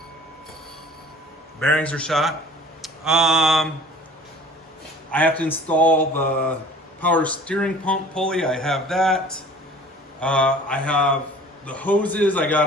Bearings are shot. I have to install the power steering pump pulley. I have that. I have the hoses. I got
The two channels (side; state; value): both; normal; correlation 0.47